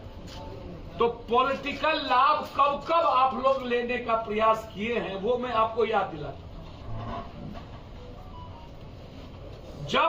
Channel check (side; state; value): both; identical; correlation 1.00